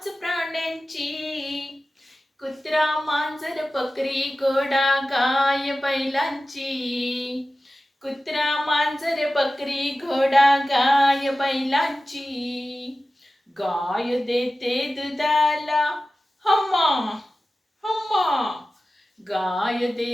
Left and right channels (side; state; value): both; normal; correlation 0.95